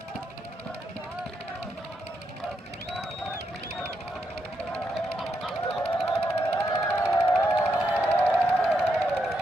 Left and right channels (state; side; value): normal; both; correlation 0.81